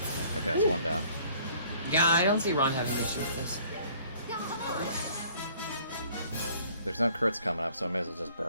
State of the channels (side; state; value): both; inverted; correlation -0.56